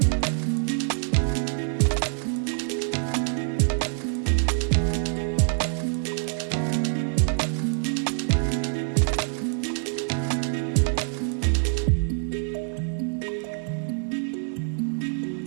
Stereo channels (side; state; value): left; silent; 58 dB below the other